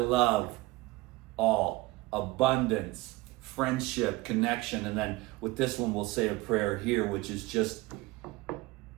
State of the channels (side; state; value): left; quieter; 20.6 dB